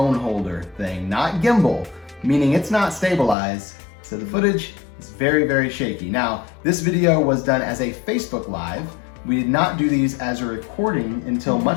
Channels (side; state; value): right; drops out; at 3.4 s